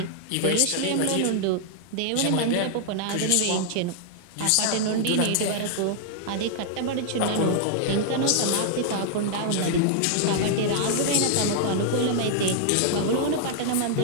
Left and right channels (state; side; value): different; both; correlation -0.01